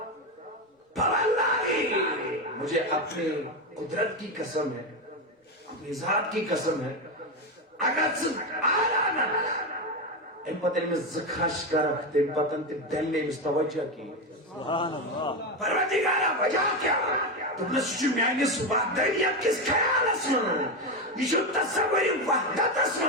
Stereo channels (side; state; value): both; normal; correlation 0.12